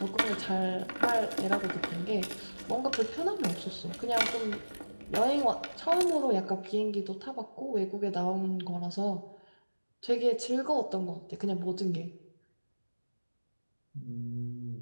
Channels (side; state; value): both; inverted; correlation -1.00